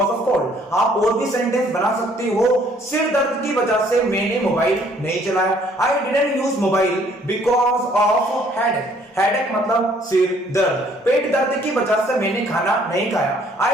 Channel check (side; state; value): both; normal; correlation 0.62